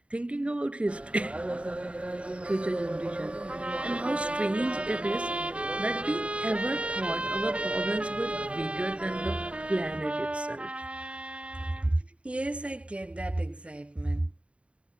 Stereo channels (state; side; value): late; left; 0.061 ms